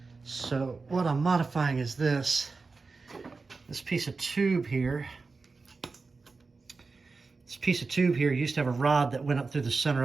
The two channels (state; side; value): quieter; left; 4.2 dB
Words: So what I'm modifying is this piece of tube here. This piece of tube here used to have a rod that went up through the center